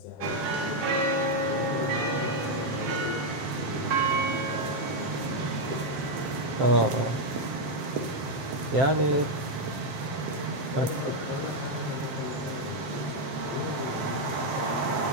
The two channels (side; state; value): left; late; 7.6 ms